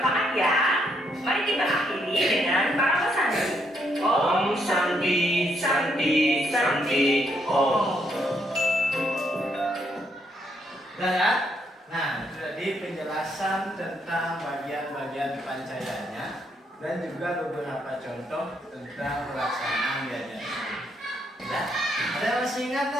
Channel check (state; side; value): normal; both; correlation 0.75